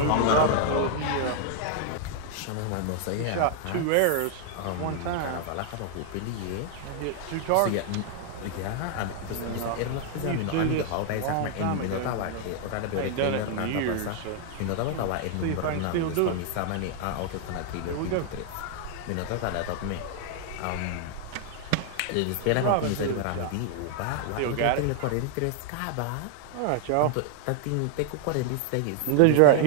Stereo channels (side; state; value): both; different; correlation 0.00